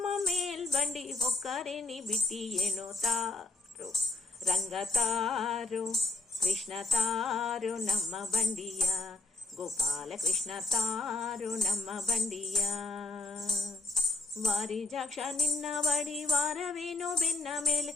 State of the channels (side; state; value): right; quieter; 3.4 dB